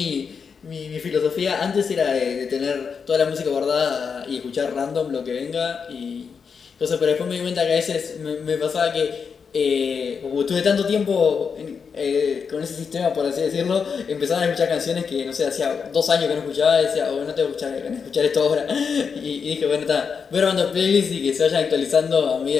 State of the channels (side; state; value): right; quieter; 6.0 dB